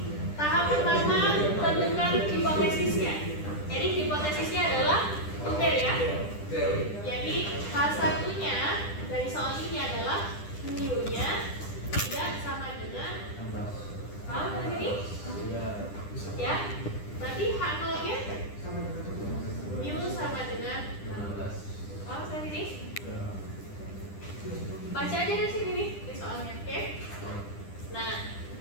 Tahap pertama, tentukan hipotesisnya. Jadi hipotesisnya adalah tutil ya. Jadi H1-nya dari soal ini adalah mu-nya tidak sama dengan, paham sampai sini? Ya. Berarti H0-nya mu sama dengan 16. Paham sampai sini? Baca aja dari sini nih di soalnya, oke? Nah,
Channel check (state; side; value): late; right; 10 ms